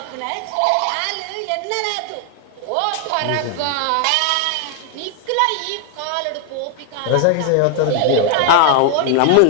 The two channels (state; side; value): different; both; correlation 0.00